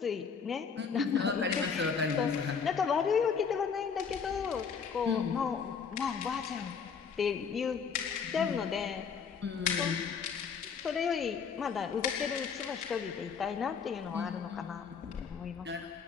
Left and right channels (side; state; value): right; quieter; 6.3 dB